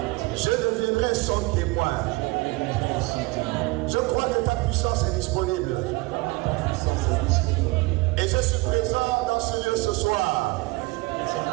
Je deviendrai son témoin. Je crois que ta puissance est disponible. Et je suis présent dans ce lieu ce soir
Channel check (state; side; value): quieter; left; 23.7 dB